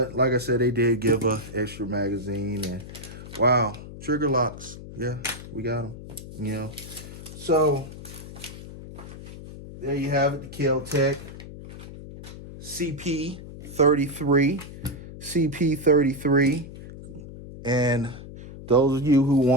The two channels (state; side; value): noise; left; hum, 13 dB below the sound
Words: like I said, they did give a extra magazine, and wow, trigger locks. Yeah, we got them, you know. So there you have it, the Kel Tec CP33. CP33. And those of you who